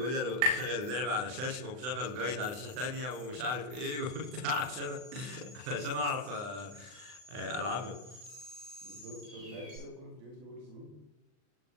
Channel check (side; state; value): left; late; 39 ms